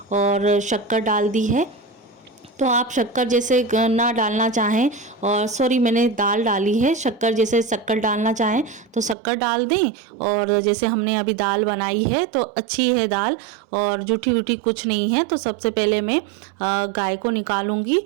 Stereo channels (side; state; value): left; drops out; at 9.2 s